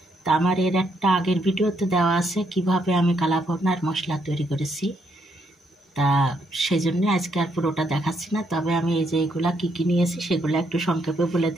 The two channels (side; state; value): both; normal; correlation 0.75